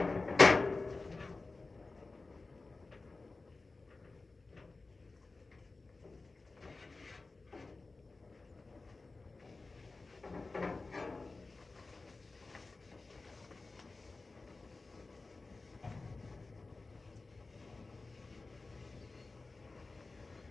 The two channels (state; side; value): quieter; right; 3.6 dB